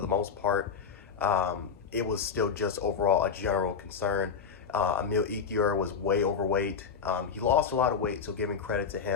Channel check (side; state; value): right; quieter; 6.4 dB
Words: most part, it was still just overall a general concern. Emil Ekiyor was way overweight. He lost a lot of weight, so giving credit to